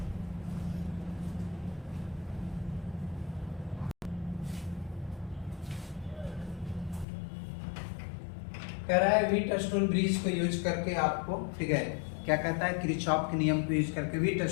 कह रहा है व्हीटस्टोन ब्रिज को यूज करके आपको, ठीक है, क्या कहता है किरचॉफ के नियम को यूज करके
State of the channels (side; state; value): right; drops out; at 7.1 s